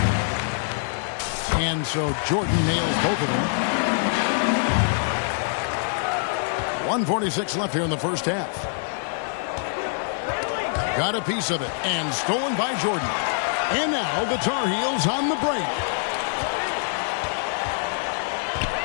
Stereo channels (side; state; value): right; silent; 55 dB below the other